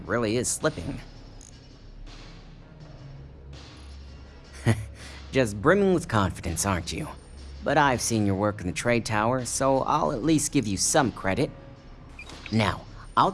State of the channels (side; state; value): both; identical; correlation 1.00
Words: is slipping. Just brimming with confidence, aren't you? But I've seen your work in the trade tower, so I'll at least give you some credit. Now, I'll